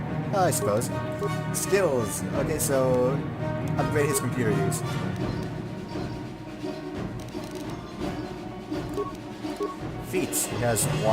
I suppose. Skills. Okay, so upgrade his computer use. Feats. He has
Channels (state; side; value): identical; both; correlation 1.00